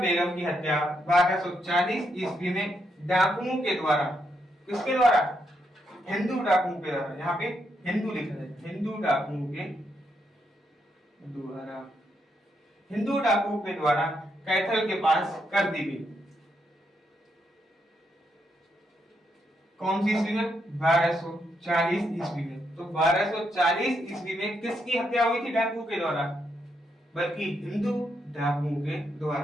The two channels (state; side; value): normal; both; correlation 0.79